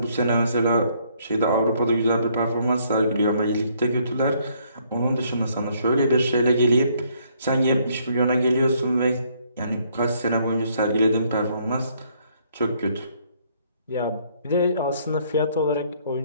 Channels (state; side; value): inverted; both; correlation -0.67